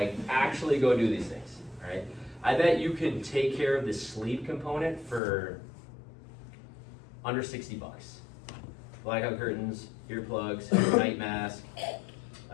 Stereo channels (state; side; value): drops out; right; at 5.2 s